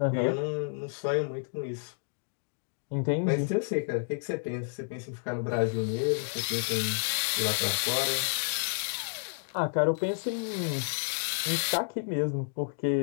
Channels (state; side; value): silent; right; digital silence